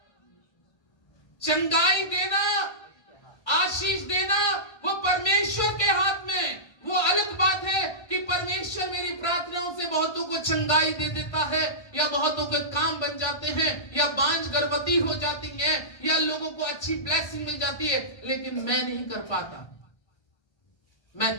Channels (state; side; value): late; right; 1.3 ms